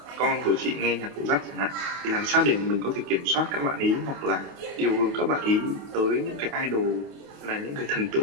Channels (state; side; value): late; left; 28 ms